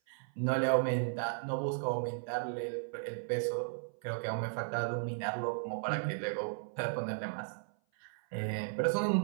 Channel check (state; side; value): silent; left; 54 dB below the other